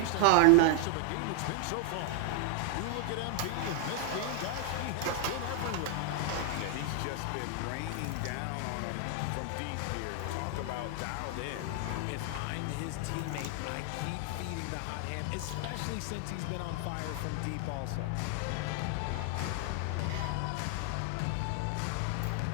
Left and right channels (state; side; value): different; both; correlation 0.00